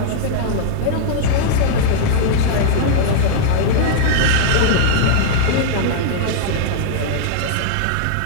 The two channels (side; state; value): both; different; correlation -0.01